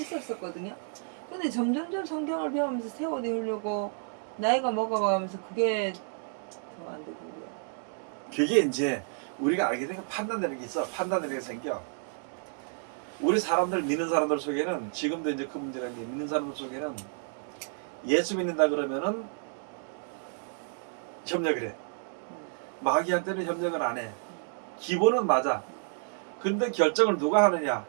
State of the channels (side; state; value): left; silent; 58 dB below the other